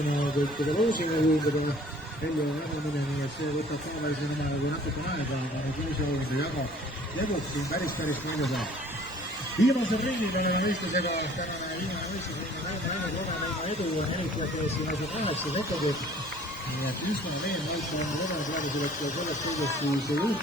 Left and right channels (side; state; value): both; normal; correlation 0.53